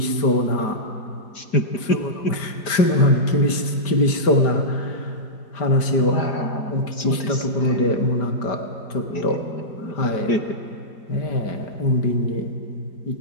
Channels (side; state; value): right; late; 5.1 ms